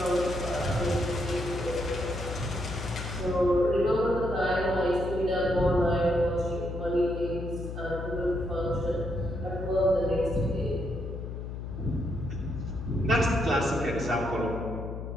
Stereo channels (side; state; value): left; noise; hum, 7 dB below the sound